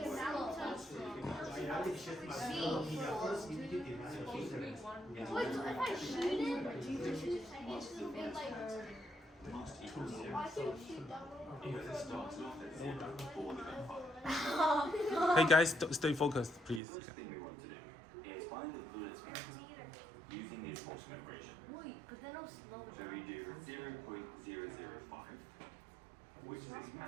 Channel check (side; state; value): left; drops out; at 16.8 s